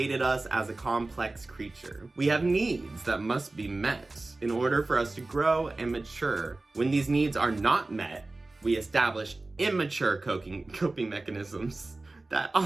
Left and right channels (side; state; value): left; quieter; 3.1 dB